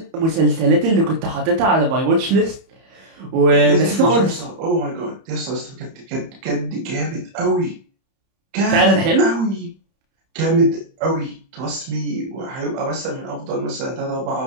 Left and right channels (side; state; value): left; late; 31 ms